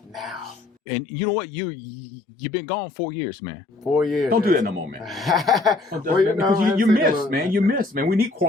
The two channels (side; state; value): right; quieter; 3.3 dB